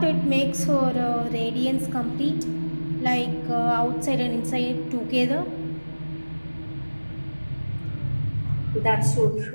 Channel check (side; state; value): both; inverted; correlation -1.00